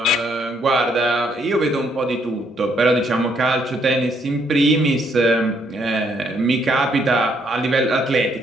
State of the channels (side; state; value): both; normal; correlation 0.70